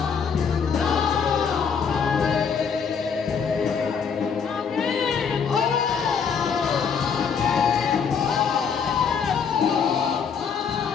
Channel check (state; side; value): quieter; right; 6.5 dB